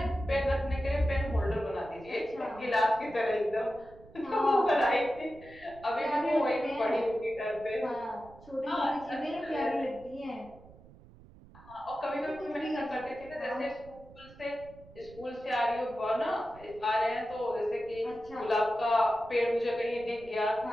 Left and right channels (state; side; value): noise; right; rumble, 22 dB below the sound